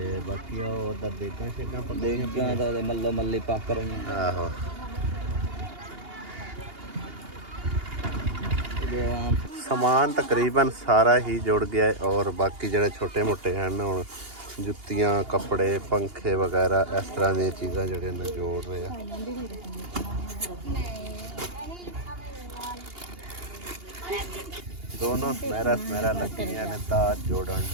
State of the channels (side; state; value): left; late; 2.8 ms